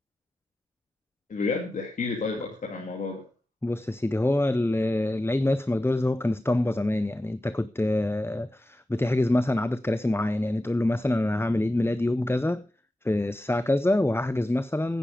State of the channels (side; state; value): both; normal; correlation 0.93